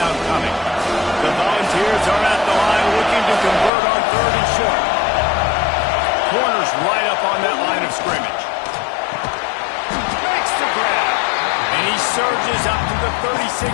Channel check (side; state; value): right; drops out; at 3.7 s